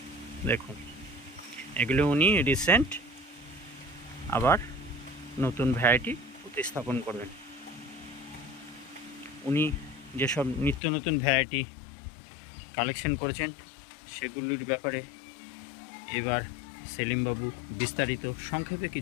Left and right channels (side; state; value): right; drops out; at 10.8 s